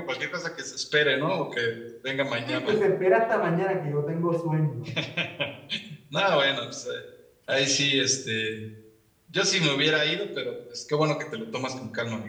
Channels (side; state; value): both; identical; correlation 1.00